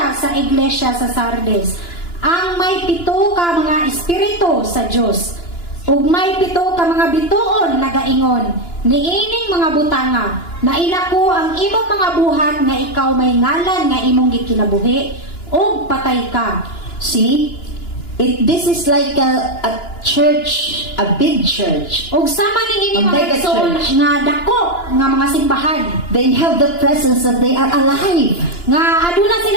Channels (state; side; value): late; right; 2.9 ms